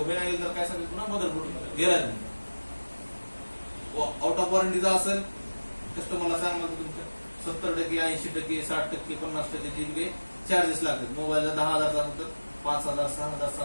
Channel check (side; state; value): both; inverted; correlation -1.00